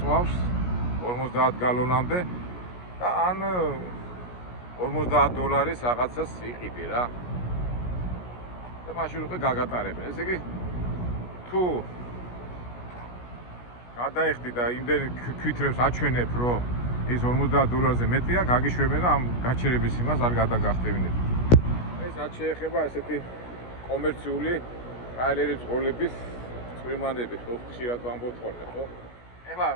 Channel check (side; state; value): right; late; 17 ms